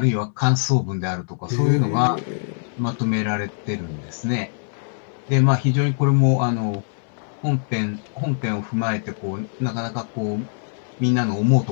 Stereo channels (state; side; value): silent; right; 64 dB below the other